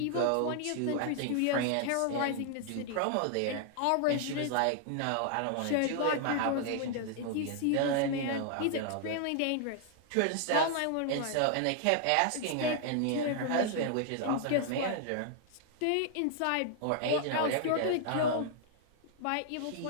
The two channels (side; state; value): both; different; correlation 0.00